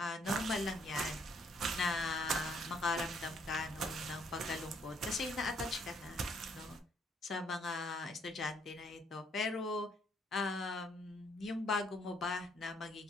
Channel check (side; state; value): both; normal; correlation 0.67